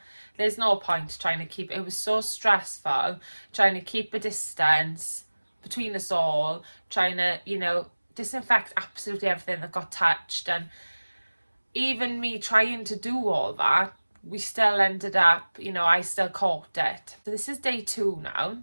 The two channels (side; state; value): both; inverted; correlation -1.00